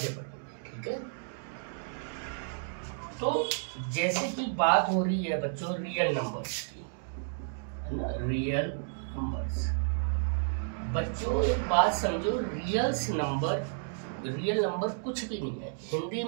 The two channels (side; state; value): left; silent; digital silence